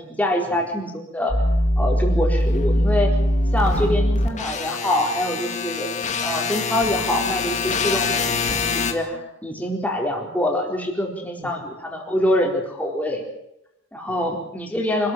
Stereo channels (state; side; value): normal; both; correlation 0.63